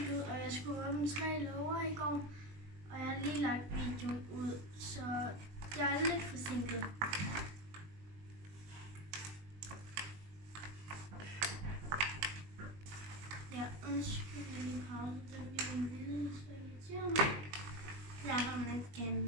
ud, og jeg skulle åbne 3 låger i går. Og jeg har lige lagt videoen ud, så jeg er lidt forsinket. Ja, undskyld, jeg lige pause. Der bliver en lille, så irriterer mig. Jeg har man ikke gerne en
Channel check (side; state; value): left; late; 20 ms